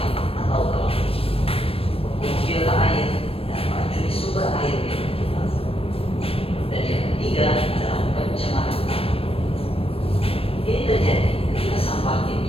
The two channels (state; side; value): late; right; 0.28 ms